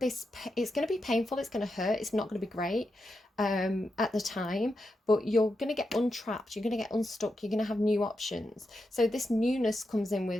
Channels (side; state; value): both; normal; correlation 0.87